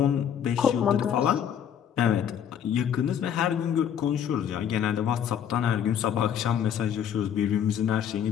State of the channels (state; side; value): quieter; right; 9.0 dB